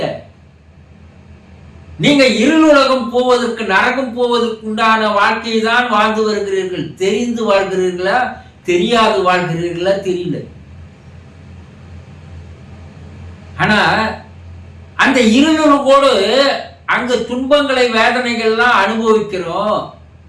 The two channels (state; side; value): identical; both; correlation 1.00